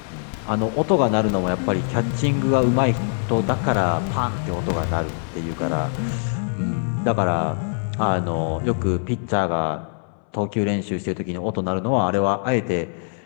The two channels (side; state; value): right; silent; 64 dB below the other